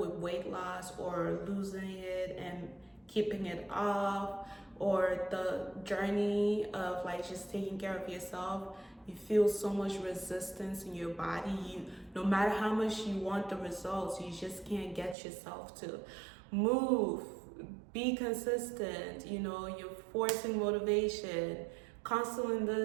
weight loss or losing it and keeping it off, or the journey of just taking care of yourself, you feel so much resistance in your body. No matter how much you want the results, you just can't get yourself to move, be consistent. You're forcing motivation, constantly in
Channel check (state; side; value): drops out; left; at 15.2 s